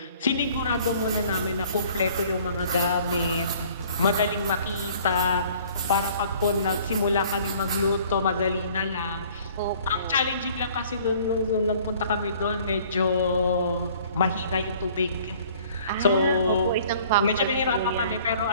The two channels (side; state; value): both; inverted; correlation -0.55